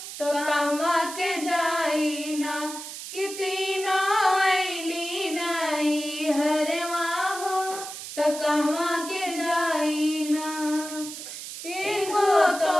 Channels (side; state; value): right; noise; hiss, 10 dB below the sound